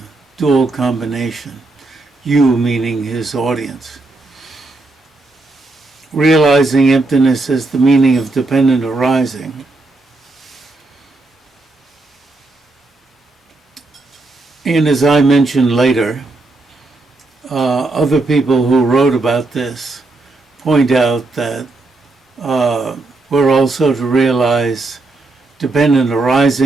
dual combination, you meaning his audience. Realizing emptiness as the meaning of dependent arising. And as I mentioned later, other people who wrote about this point out that we're also to realize dependent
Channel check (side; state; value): left; quieter; 3.1 dB